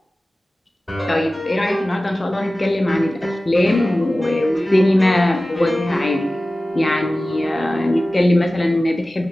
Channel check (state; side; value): normal; both; correlation 0.96